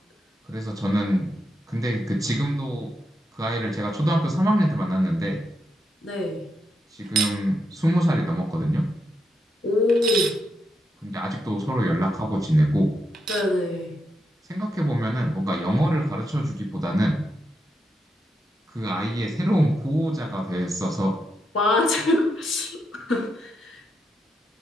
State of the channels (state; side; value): normal; both; correlation 0.84